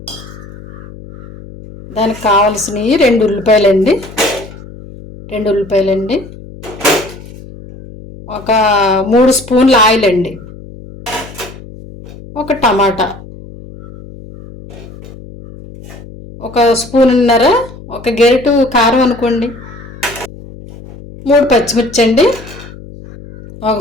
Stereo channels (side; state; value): left; noise; hum, 17 dB below the sound